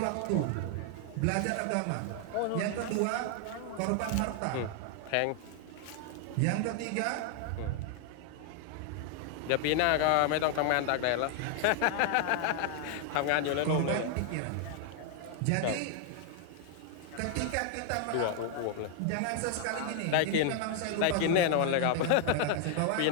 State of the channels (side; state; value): both; different; correlation 0.00